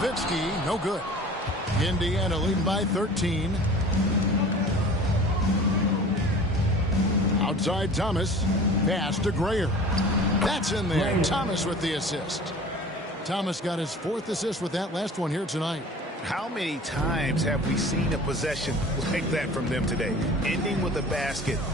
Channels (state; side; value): normal; both; correlation 0.42